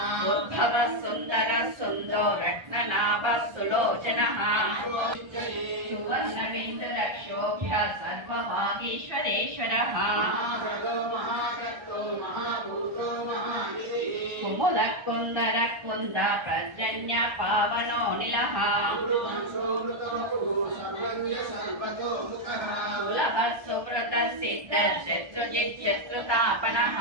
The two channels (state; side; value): late; left; 1.3 ms